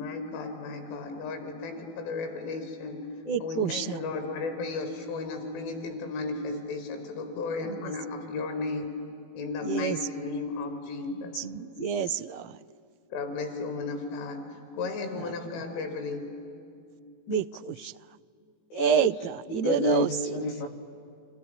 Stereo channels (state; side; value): late; right; 18 ms